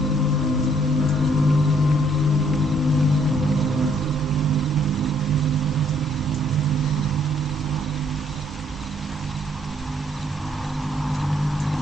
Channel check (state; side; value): normal; both; correlation 0.67